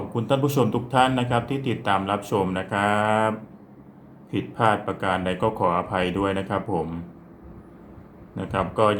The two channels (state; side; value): identical; both; correlation 1.00